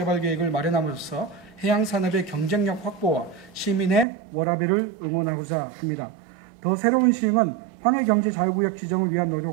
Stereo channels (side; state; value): left; drops out; at 4.0 s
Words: 마련함으로써 해양산업의 경쟁력 확보와 시민의 워라밸을 응원하고자 합니다. 더 새로운 시흥은 황해경제자유구역 지정을 위한